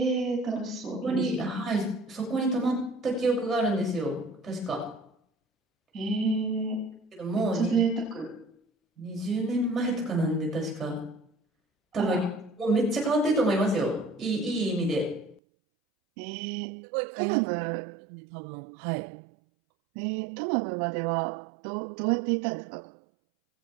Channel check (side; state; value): left; drops out; at 15.4 s